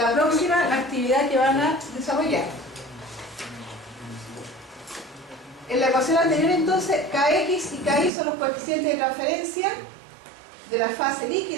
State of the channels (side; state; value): left; drops out; at 8.1 s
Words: próxima actividad que van a desarrollar. En la ecuación anterior, entonces, Kx y Ky son los coeficientes de transferencia de la fase